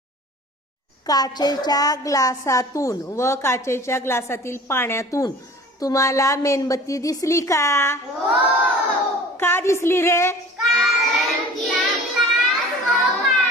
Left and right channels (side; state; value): both; normal; correlation 0.44